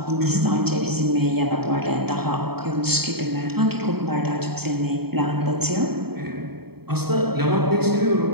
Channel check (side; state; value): left; late; 0.96 ms